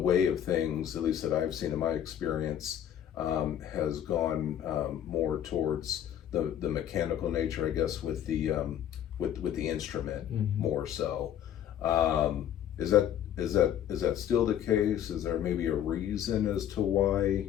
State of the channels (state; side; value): quieter; right; 10.2 dB